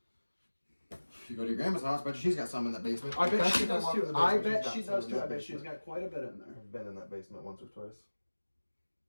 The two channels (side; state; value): both; inverted; correlation -1.00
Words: If you go to your grandma's house, bet she's got some in that basement. I bet Especially she if I does walk in too. the I basement, bet she's she got some does in too. that I bet she's basement. got quite a bit in there. I've been in that basement once or twice.